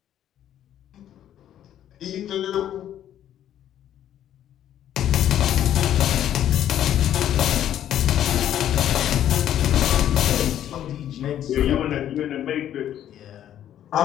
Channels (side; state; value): right; quieter; 11.1 dB